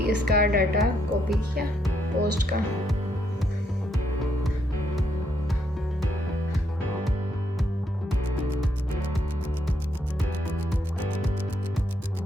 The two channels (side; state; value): both; normal; correlation 0.76